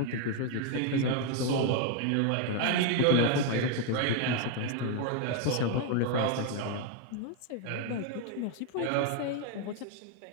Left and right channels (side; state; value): both; different; correlation 0.01